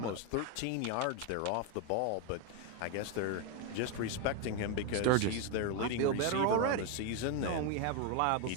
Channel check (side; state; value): both; different; correlation 0.01